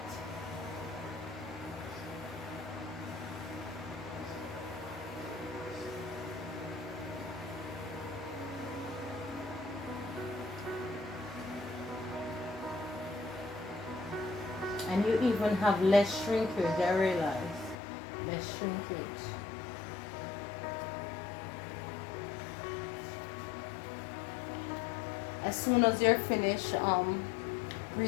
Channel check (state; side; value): drops out; right; at 17.8 s